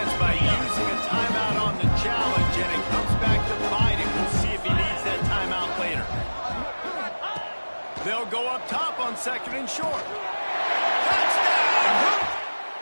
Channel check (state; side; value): inverted; both; correlation -1.00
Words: by using a timeout on the challenge, and it comes back to bite him. We'll see if he needs that timeout later. They'll go up top on 2nd and short. Touchdown!